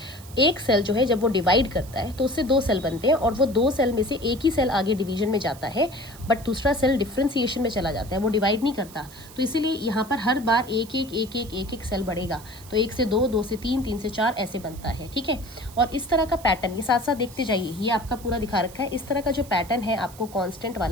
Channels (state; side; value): noise; right; hiss, 19 dB below the sound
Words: एक सेल जो है जब वो डिवाइड करता है तो उससे दो सेल बनते हैं, और वो दो सेल में से एक ही सेल आगे डिवीजन में जाता है, बट दूसरा सेल डिफ्रेंसिएशन में चला जाता है, वो डिवाइड नहीं करता। तो इसीलिए यहाँ पर हर बार एक एक सेल बढ़ेगा। तो एक से दो, दो से तीन, तीन से चार, ऐसे बनता है। ठीक है। और इस तरह का पैटर्न ये साथ साथ देखते जाइए, ये आपका पूरा दिखा रखा है। इस तरह का जो पैटर्न है आपको कांस्टेंट